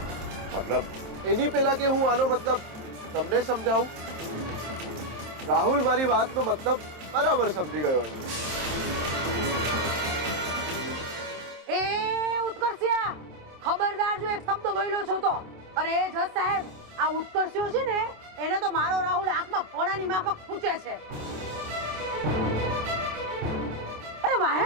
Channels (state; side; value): late; left; 27 ms